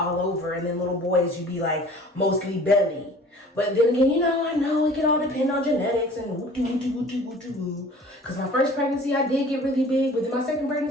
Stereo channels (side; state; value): both; normal; correlation 0.47